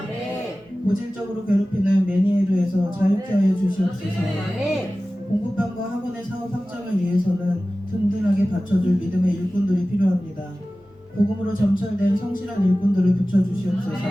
고질적으로 괴롭히는 메니에르에서 자유케 하여 주시옵소서. 공부방과 학원의 사업 확장을 위해서는 든든하게 받쳐줄 믿음의 일꾼들이 필요합니다. 복음으로 점철된 성실한 일꾼들을 붙여주시옵소서.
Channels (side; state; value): both; normal; correlation 0.96